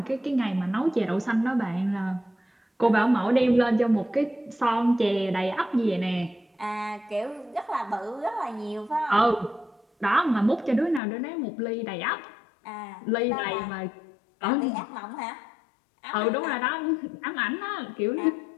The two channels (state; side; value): drops out; right; at 11.0 s